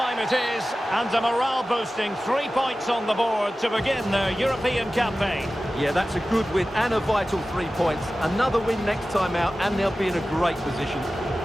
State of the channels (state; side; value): normal; both; correlation 0.95